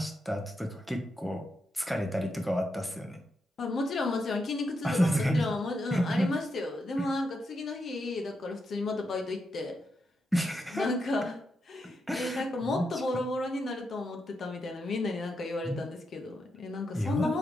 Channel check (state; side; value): normal; both; correlation 0.83